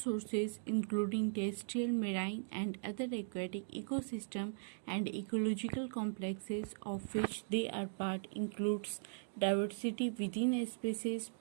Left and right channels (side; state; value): left; silent; digital silence